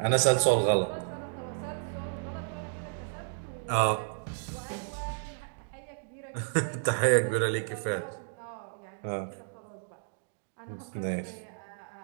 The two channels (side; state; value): left; silent; digital silence